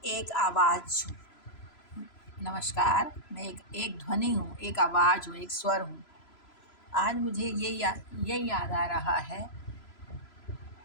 एक आवाज़ हूँ। नमस्कार, मैं एक ध्वनि हूँ, एक आवाज़ हूँ, एक स्वर हूँ। आज मुझे ये याद आ रहा है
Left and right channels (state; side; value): late; right; 3.0 ms